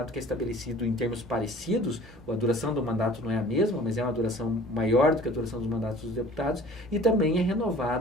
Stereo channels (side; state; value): both; normal; correlation 0.47